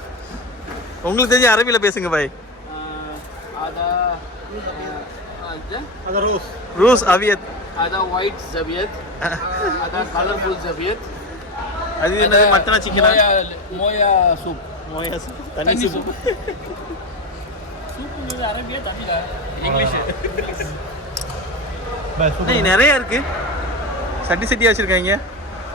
உங்களுக்கு தெரிஞ்ச அரபியில பேசுங்க பாய். ada rose. Rose aviat. ada white zabiat. ada colorful zabiat. அது என்னது? மட்டனா சிக்கனா? மோயா சூப். மோயா சூப். தண்ணி சூப். சூப்புங்கிறது அரபியா தமிழா? இங்கிலீஷ். நிறைய இருக்கு. சட்டி சட்டியா வச்சிருக்காங்க.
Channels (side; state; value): both; normal; correlation 0.19